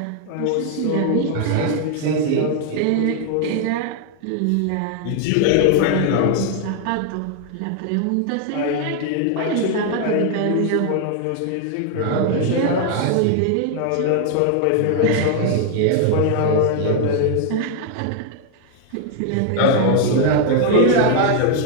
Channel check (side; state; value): both; different; correlation 0.00